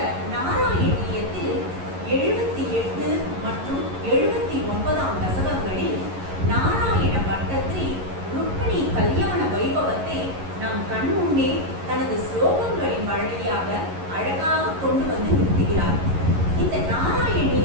நாராயணியத்தில் 78 மற்றும் 79 தசகங்களில் நாராயண பட்டத்திரி ருக்மிணி கல்யாண வைபவத்தை நம் கண்முன்னே தனது ஸ்லோகங்களின் வழியாக அழகாக கொண்டு வந்து நிறுத்துகிறார். இந்த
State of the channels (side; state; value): left; late; 11 ms